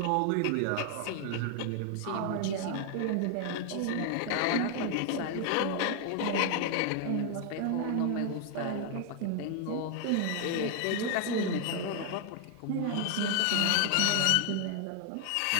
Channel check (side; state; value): both; different; correlation 0.00